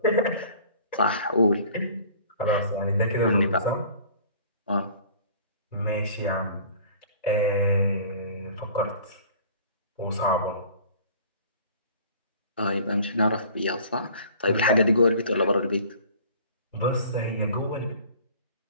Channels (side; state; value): both; inverted; correlation -0.48